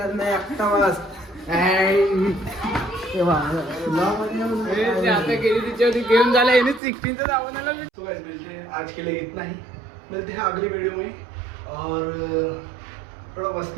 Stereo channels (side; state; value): left; drops out; at 6.8 s